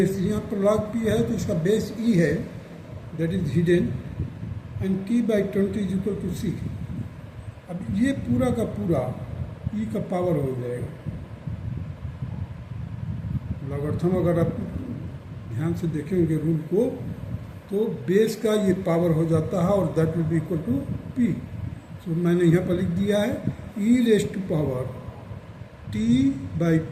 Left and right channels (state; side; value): identical; both; correlation 1.00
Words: यहाँ पर लॉग पी है तो इसका बेस ई है, that is hidden, and T by 20 is equal to C. अब ये पूरा का पूरा ई का पावर हो जाएगा. लॉगरिथम अगर आप ध्यान से देखेंगे रूल को तो बेस का ये पावर हो जाता है और that will be equal to P. So मैंने यहाँ पर लिख दिया है E raised to power T by